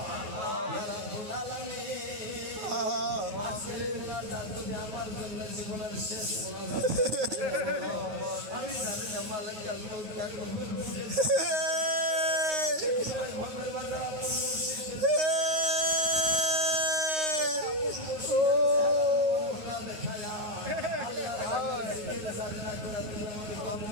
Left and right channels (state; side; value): late; left; 9.3 ms